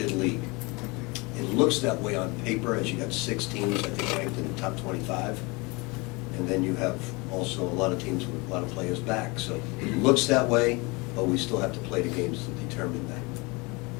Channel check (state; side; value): quieter; right; 26.8 dB